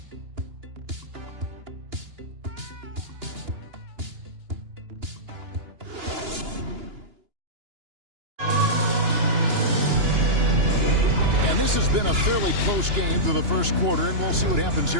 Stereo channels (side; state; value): left; late; 2.9 ms